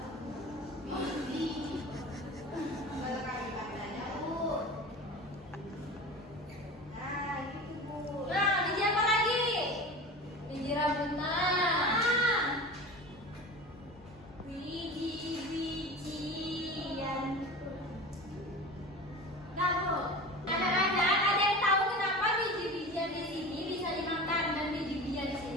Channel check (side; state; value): both; normal; correlation 0.33